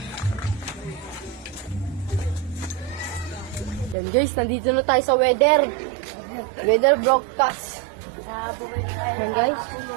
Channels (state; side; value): drops out; left; at 4.0 s